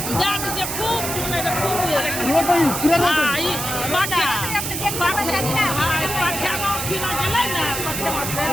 जान जे खूब नहीं रे खूब ये कोई पूरा हां ई बाटा पाठ्या में किना गेलै ना,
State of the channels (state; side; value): noise; right; hiss, 4 dB below the sound